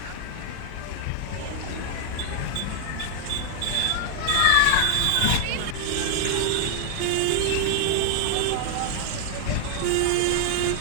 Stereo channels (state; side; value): different; both; correlation 0.00